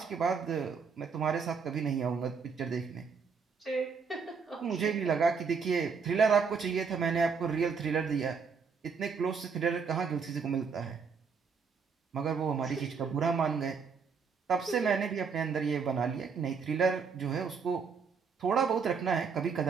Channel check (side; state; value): left; quieter; 5.7 dB